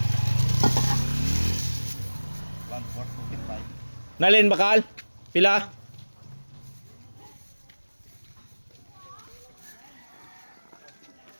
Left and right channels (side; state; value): both; inverted; correlation -1.00